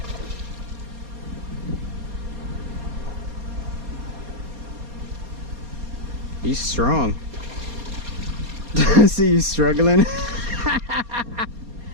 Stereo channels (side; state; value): left; late; 4.2 ms